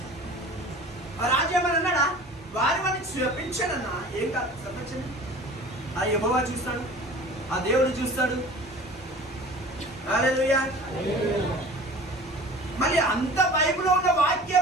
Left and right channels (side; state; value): both; normal; correlation 0.41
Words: రాజు ఏమని అన్నాడా? వారిని శపించాడన్నా. ఏం కాదు, శపించండి. ఆ యెహోవా చూస్తాడు, ఆ దేవుడు చూస్తాడు. హల్లెలూయా. మళ్ళీ అంత బైబిల్లో ఉన్న